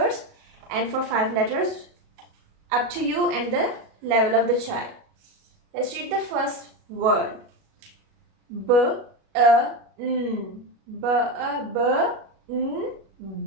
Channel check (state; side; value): late; left; 37 ms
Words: and for 5 letters, up to you and the level of the child. Let's read the first word. Bun.